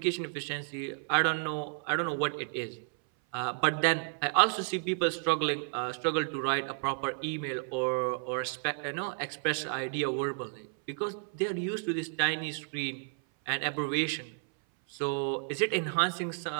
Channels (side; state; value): left; silent; 57 dB below the other